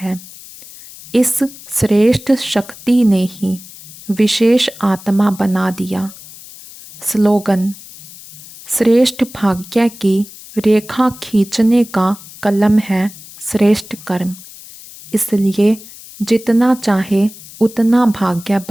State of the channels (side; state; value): left; noise; hiss, 18 dB below the sound